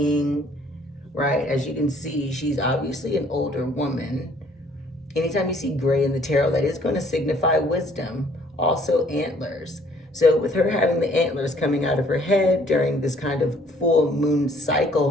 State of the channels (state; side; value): normal; both; correlation 0.60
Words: right? As you can see, she's obviously an older woman. Anytime you see gray in the tarot, that is going to signify wisdom. Also antlers. So with her having the antlers coming out of her head during this kind of full moon